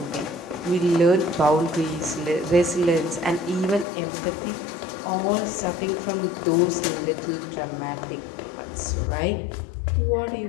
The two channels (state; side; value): drops out; right; at 3.9 s